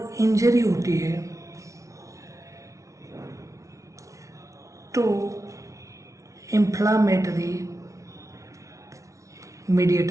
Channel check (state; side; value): late; left; 0.15 ms